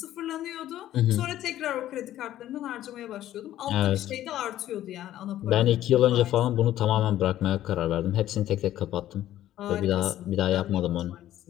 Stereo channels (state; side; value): quieter; right; 13.0 dB